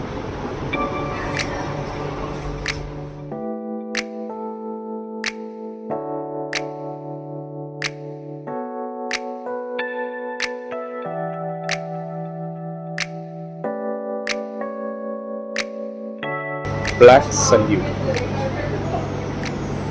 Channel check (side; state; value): both; identical; correlation 1.00